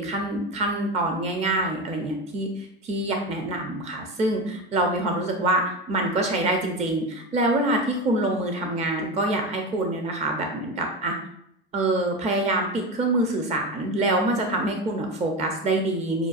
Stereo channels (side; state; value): both; normal; correlation 0.21